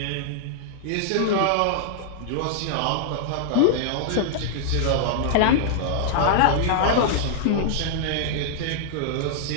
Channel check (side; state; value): both; different; correlation -0.01